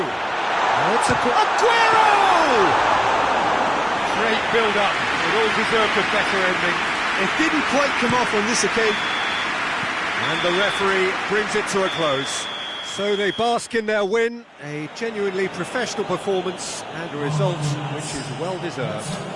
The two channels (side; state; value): both; identical; correlation 1.00